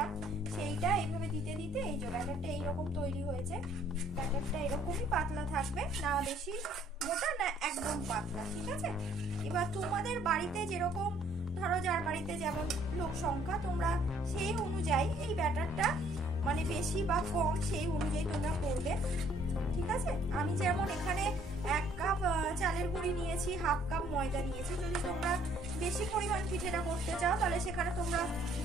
সেইটা এইভাবে দিতে দিতে এই যে ব্যাটারটা এইরকম তৈরি হয়েছে। ব্যাটারটা এরকমই পাতলা থাকবে, না বেশি মোটা না একদম পাতলা, ঠিক আছে? এবার তোমাদের বাড়িতে যেরকম, ধরো যার বাড়িতে যেমন লোক সংখ্যা, তোমরা সেই অনুযায়ী এই ব্যাটারটা মানে বেশি বা কম সেই অনুযায়ী তোমরা করবে, ঠিক আছে? আমি যেমন এখানে 1 কাপ চালের গুঁড়ি নিয়েছি, 1/2 কাপ ময়দা নিয়েছি। যদি তোমরা বেশি পরিমাণ পিঠেটা করতে চাও তাহলে সেখানে তোমরা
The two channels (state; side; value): normal; both; correlation 0.61